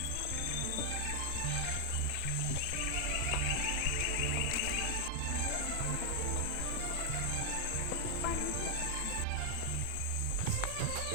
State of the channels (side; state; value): both; different; correlation 0.00